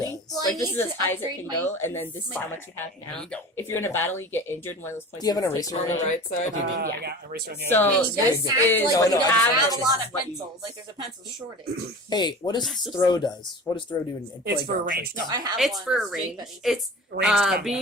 does. Well, I Like this need is as to high as it upgrade can my go, and then this is how much you have now. If you're in a battle, you get injured. One of those points. Do you have an gets eraser On taken the away. right side? Okay, yeah. I got eraser on the So other. Yeah, you this guys act is like No, you no, don't I have just- a lot of what you pencils. use. Like there's a pencil shortage. Hey, what does throw does? What does throw do in It's for playground range. No, training? I have It's one. for a Jake range. Betty's. It's Range combat.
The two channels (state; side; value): normal; both; correlation 0.37